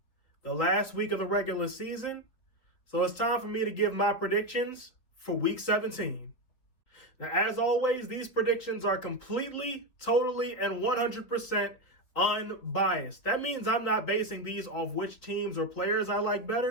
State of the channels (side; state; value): right; late; 4.0 ms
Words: the last week of the regular season. So it's time for me to give my predictions for week 17. Now, as always, these predictions are completely, totally, and 100% unbiased. That means I'm not basing these off which teams or players I like